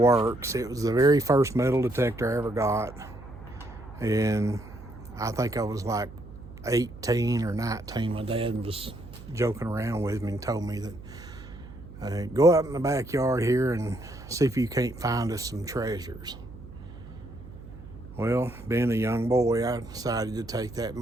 It was the very first metal detector I ever got, and I think I was like 18 or 19. My dad was joking around with me and told me that go out in the backyard here and see if you can't find us some treasures. Well, being a young boy, I decided to take that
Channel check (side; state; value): right; noise; hum, 16 dB below the sound